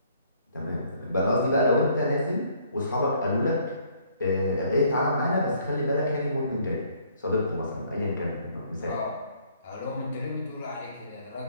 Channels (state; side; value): inverted; both; correlation -0.63